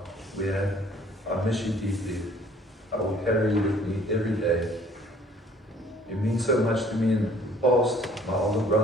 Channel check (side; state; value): both; normal; correlation 0.56